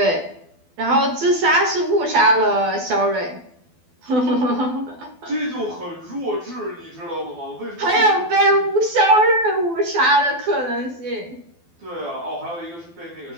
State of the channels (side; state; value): left; late; 12 ms